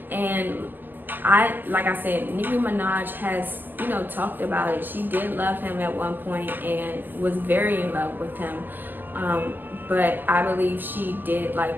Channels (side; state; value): left; late; 0.089 ms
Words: And like I said, Nicki Minaj has, you know, talked about it. She did love him at one point and was very in love with him. But I believe she did